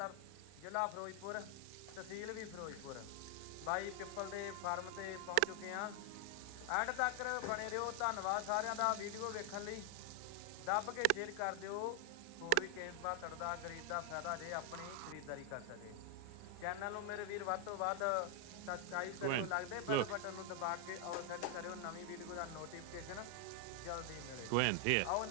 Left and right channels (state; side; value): different; both; correlation 0.00